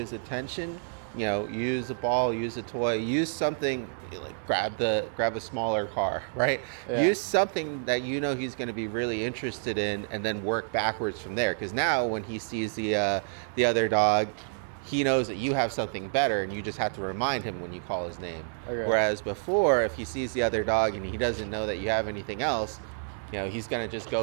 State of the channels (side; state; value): left; silent; 59 dB below the other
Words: attention, use a ball, use a toy, use something like grab a smaller car, right? Yeah. Use something that he's going to be really interested in, and then work backwards from there. Because now when he sees the other dog, he knows that you have something better, and you just have to remind him when you call his name. Okay. Whereas before, if he sees the other dog and he doesn't know that you have anything else, he's going to just